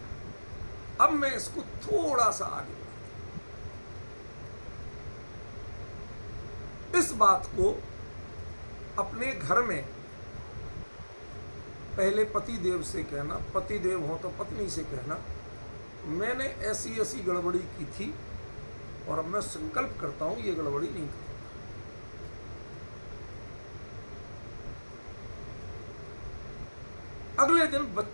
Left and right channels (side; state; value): both; inverted; correlation -1.00